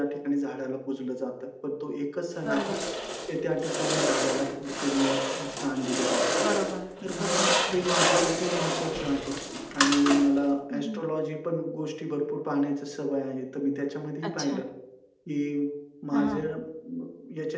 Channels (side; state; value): both; identical; correlation 1.00